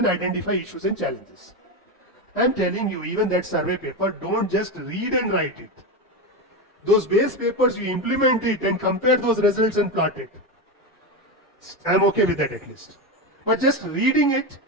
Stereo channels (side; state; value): both; normal; correlation 0.15